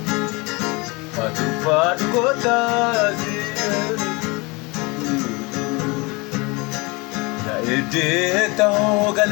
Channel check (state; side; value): quieter; right; 26.5 dB